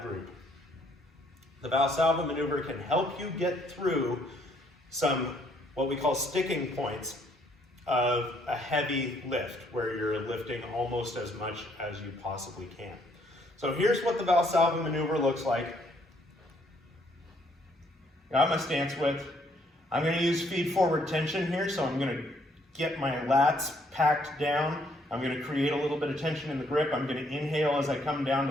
group, the Valsalva maneuver can help you get through some what we call sticking points of a heavy lift, where you're lifting almost as much as you possibly can. So here's what the Valsalva maneuver looks like. Got my stance width. I'm going to use feed forward tension here, so I'm going to get my lats packed down. I'm going to create a little bit of tension in the grip. I'm going to inhale as I come down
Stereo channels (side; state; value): both; normal; correlation 0.68